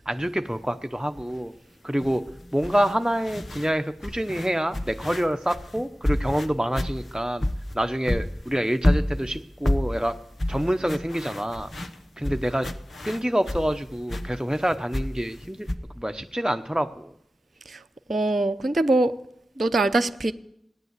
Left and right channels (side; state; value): both; normal; correlation 0.95